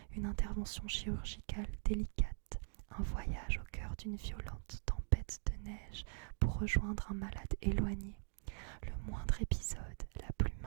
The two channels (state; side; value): silent; left; digital silence